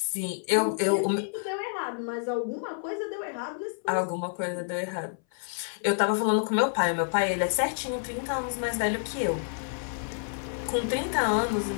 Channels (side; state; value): right; silent; 59 dB below the other